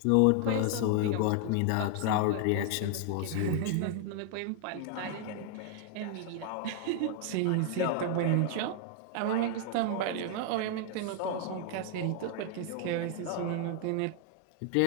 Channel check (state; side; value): different; both; correlation 0.00